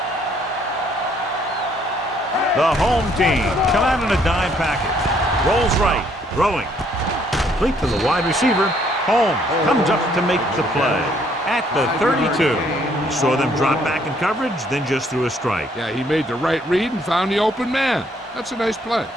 The home team come out in a dime package. Rolls right, throwing. Complete to the wide receiver. Holmes comes up to make the play at the 32. He saw them drop back in coverage, then just threw a strike. Yeah, he made the right read and found the open man. That's a nice play.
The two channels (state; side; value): normal; both; correlation 0.66